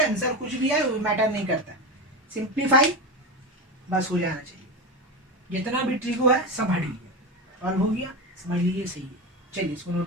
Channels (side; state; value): both; normal; correlation 0.19